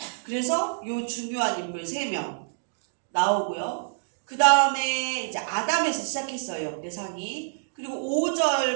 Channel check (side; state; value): left; silent; digital silence